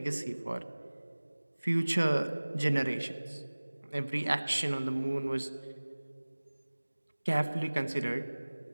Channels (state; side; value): inverted; both; correlation -1.00